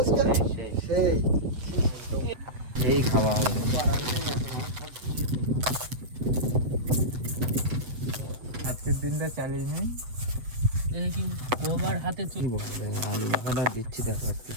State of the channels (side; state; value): left; late; 8.1 ms